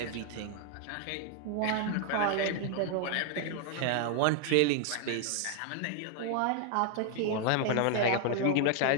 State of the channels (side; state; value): both; different; correlation 0.00